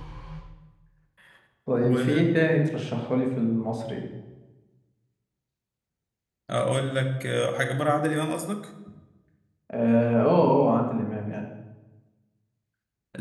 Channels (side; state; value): both; identical; correlation 1.00